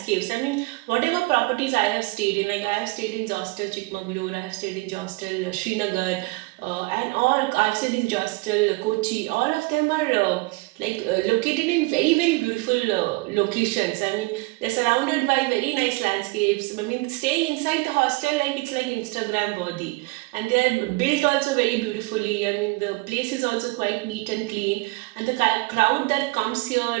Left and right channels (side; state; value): left; quieter; 23.9 dB